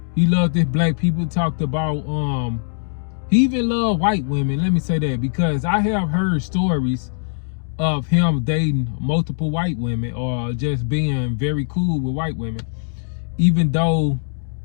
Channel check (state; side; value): silent; right; digital silence